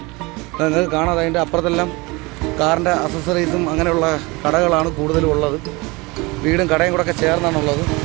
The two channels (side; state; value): left; quieter; 24.7 dB